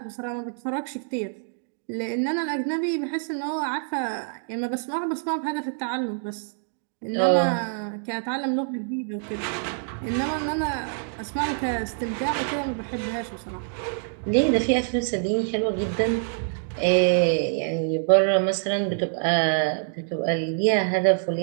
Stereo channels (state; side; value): silent; left; digital silence